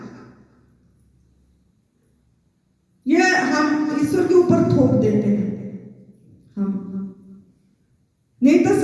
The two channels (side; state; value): both; identical; correlation 1.00